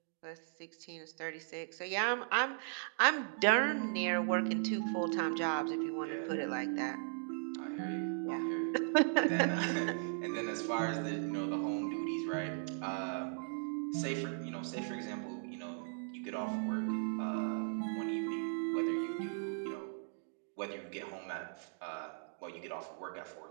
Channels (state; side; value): silent; left; digital silence